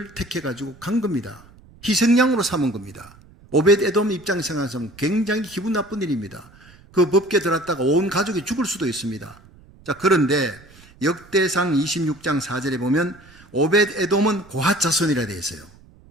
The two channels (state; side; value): noise; right; rumble, 25 dB below the sound